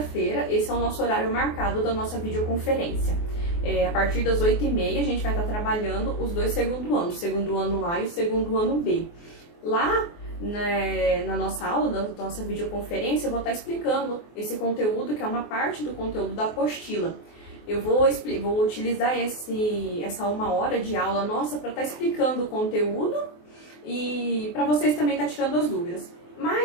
esse é o nosso horário marcado da nossa videoconferência. A partir das 8h30, a gente vai estar trabalhando os dois segundo anos, o segundo ano A e o segundo ano B. Lá, na nossa aula, da nossa videoconferência, eu vou estar explicando esse conteúdo, que é uma parte do conteúdo da apostila. Eu vou utilizar essa 1 hora de aula nossa para estar explicando o conteúdo e para vocês também estar tirando as dúvidas.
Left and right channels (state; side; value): late; right; 24 ms